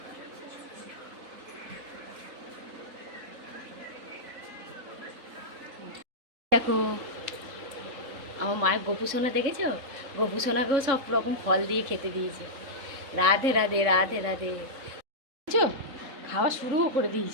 দেখো আমার মায়ের গোপু সোনা দেখেছো? গোপু সোনাকেও সব রকম ফল দিয়ে খেতে দিয়েছে। রাধে রাধে রাধে রাধে। বুঝছো, খাওয়া শুরুও করে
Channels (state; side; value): late; left; 3.7 ms